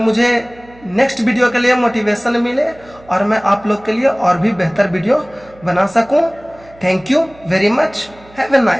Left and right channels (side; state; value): right; noise; hum, 25 dB below the sound